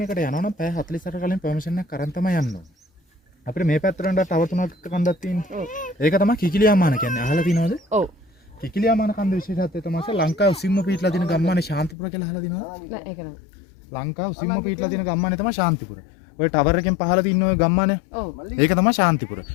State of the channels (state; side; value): drops out; right; at 12.0 s